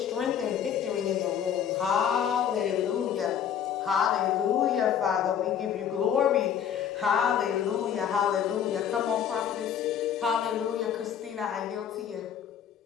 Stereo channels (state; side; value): quieter; right; 8.8 dB